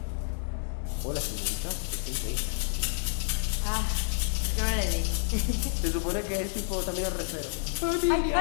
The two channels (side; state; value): right; silent; 58 dB below the other